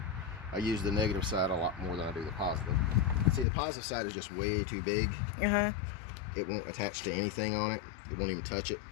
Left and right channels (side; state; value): right; drops out; at 3.5 s